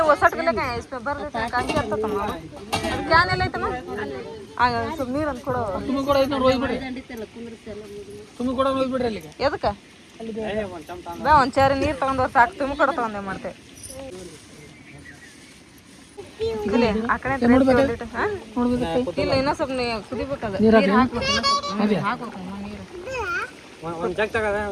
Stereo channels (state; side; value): identical; both; correlation 1.00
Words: वसट गेले काय इसमें भर देते हैं कांची आता तमाम क्या नहीं लेते ना आगे सब नीर अंत कोड़ो तुम्हें कोड़ा इतना रोई बिड़े तुम्हें कोड़ा रोई बिड़े लेके ये तो क्या बे ಒಂಚೂರು ನೀರು ತಗೊಂಡು ಸಾಕು तुम्हें कोड़ा तಗೊಂಡೆ ಮಾಡ್ತೆ ಇಲ್ಲಿ ಆ ಕಡೆ ನೋಡ್ಬೇಕು ಹಾ ನೋಡ್ಬೇಕು ಇಲ್ಲ ಇನ್ನ ಸ್ವಲ್ಪ ಕುದಿಬೇಕಲ್ಲ ನೀರು ಹಾಕಬೇಕು ನೀರು ಒಂದು ಜಗ್